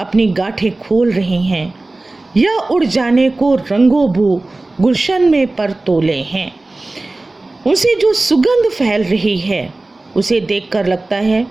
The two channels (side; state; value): left; quieter; 3.0 dB